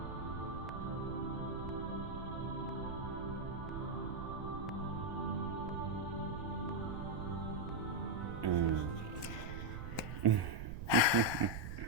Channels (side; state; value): right; noise; rumble, 7 dB below the sound